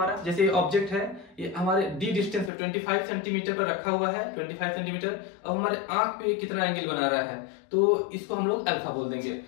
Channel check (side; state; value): right; drops out; at 2.5 s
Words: जैसे ऑब्जेक्ट है ये हमारे डी डिस्टेंस पे 25 सेंटीमीटर पर रखा हुआ है, 25 सेंटीमीटर। अब हमारे आंख पे कितना एंगल बना रहा है, तो इसको हम लोग अल्फा बोल देंगे।